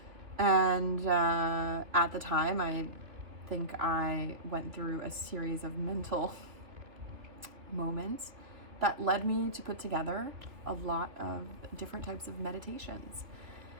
And at the time, I think I went through a series of mental moments that led me to put together a lot of different types of meditations.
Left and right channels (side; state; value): left; late; 2.8 ms